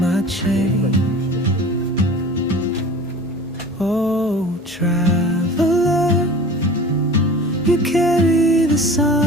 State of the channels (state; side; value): normal; both; correlation 0.40